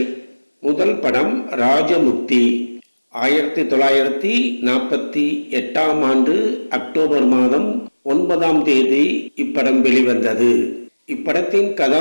முதல் படம் ராஜமுக்தி. 1948ஆம் ஆண்டு அக்டோபர் மாதம் 9ஆம் தேதி இப்படம் வெளிவந்தது. இப்படத்தின்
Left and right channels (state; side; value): inverted; both; correlation -1.00